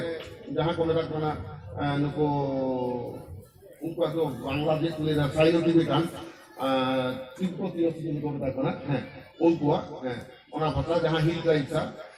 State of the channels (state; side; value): identical; both; correlation 1.00